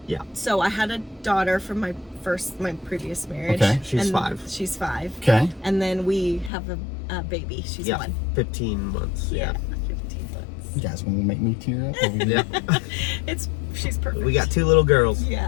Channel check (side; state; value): right; drops out; at 6.5 s